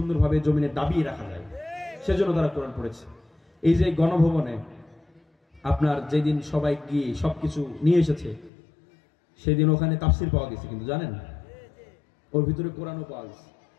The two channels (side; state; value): right; drops out; at 8.5 s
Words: জমিনে দাবিয়ে রাখা যায়, সেজন্য তারা কোরআন পড়েছে। এই যে গণভবনে আপনার যেদিন সবাই গিয়ে সবকিছু নিয়ে এসেছে, সেদিন ওখানে তাফসির পাওয়া গেছে, কিন্তু জানেন ওর ভিতরে কোরআনও পাওয়া গেছে।